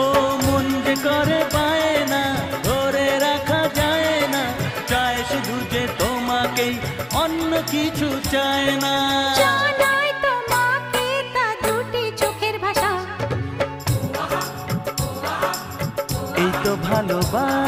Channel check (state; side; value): identical; both; correlation 1.00